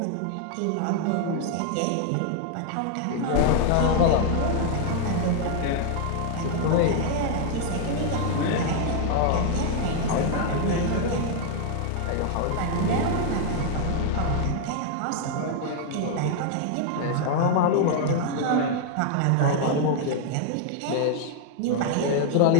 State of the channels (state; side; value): different; both; correlation 0.00